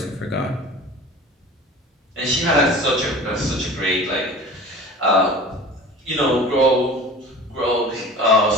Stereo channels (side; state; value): both; normal; correlation 0.39